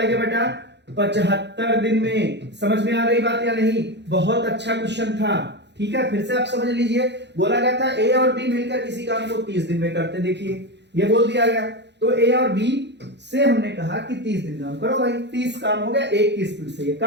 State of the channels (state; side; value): late; left; 0.50 ms